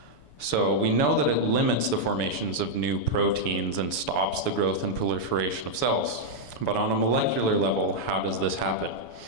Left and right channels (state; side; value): late; right; 7.0 ms